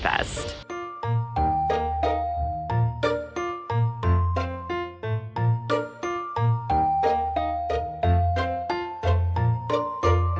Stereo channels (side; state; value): both; identical; correlation 1.00